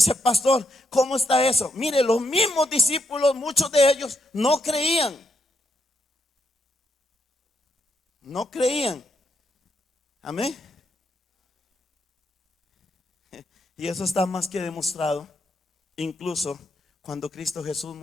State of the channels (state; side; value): normal; both; correlation 0.79